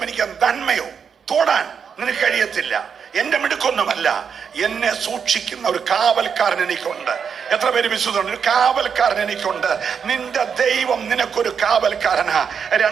എനിക്ക് നന്മയോ തൊടാൻ നിനക്ക് കഴിയത്തില്ല. എന്റെ മിടുക്കൊന്നുമല്ല, എന്നെ സൂക്ഷിക്കുന്ന ഒരു കാവൽക്കാരൻ എനിക്കുണ്ട്. എത്ര പേര് വിശ്വസിക്കുന്നുണ്ട്? ഒരു കാവൽക്കാരൻ എനിക്കുണ്ട്. നിന്റെ ദൈവം നിനക്കൊരു കാവൽക്കാരനാ.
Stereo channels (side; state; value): left; quieter; 6.8 dB